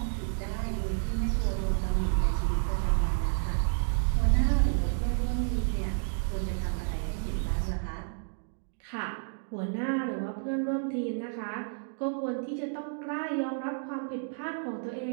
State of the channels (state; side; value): silent; left; digital silence